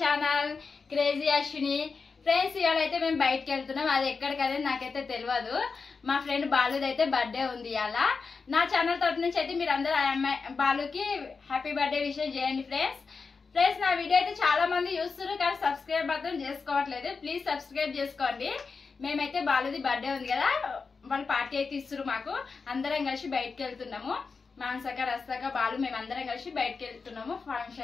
crazy Ashwini. Friends, ఇవాళ అయితే మేము బయటకు వెళ్తున్నాం. అది ఎక్కడికనేది నాకైతే తెలియదు. మా ఫ్రెండ్ బాలుది అయితే బర్త్డే ఉంది ఇవాళ. నా ఛానల్ తరఫు నుంచి అయితే మీరు అందరూ బాలుకి హ్యాపీ బర్త్డే విషయం చేయండి ఫ్రెండ్స్. నా వీడియో అయితే చాలా మంది చూస్తున్నారు కానీ సబ్స్క్రైబ్ మాత్రం చేసుకోవట్లేదు. ప్లీజ్ సబ్స్క్రైబ్ చేసుకోండి. మేమైతే బాలుది బర్త్డే ఉంది కదా, వాళ్ళు పార్టీ అయితే ఇస్తారు మాకు. అందరం కలిసి బయటకు వెళ్తున్నాము. మానసక రస్తక బాలు మేమందరం కలిసి బయటకు వెళ్తున్నాము.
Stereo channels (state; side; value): quieter; right; 4.8 dB